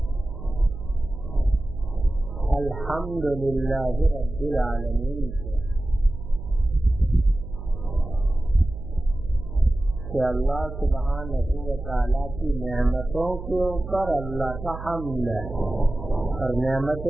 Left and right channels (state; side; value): noise; right; hum, 10 dB below the sound